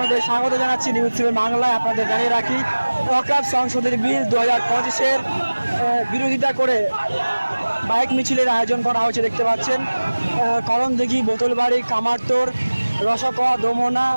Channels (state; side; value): inverted; both; correlation -1.00